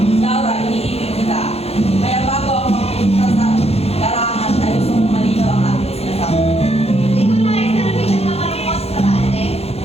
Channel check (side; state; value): right; late; 0.29 ms